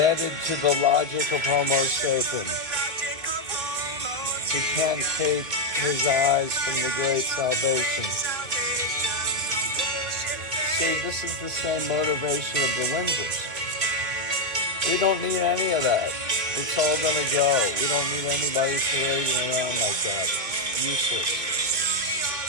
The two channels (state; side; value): late; left; 2.3 ms